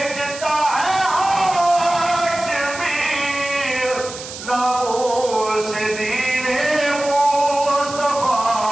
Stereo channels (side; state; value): right; noise; hiss, 11 dB below the sound